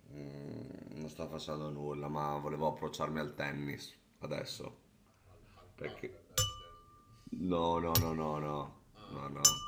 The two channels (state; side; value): identical; both; correlation 1.00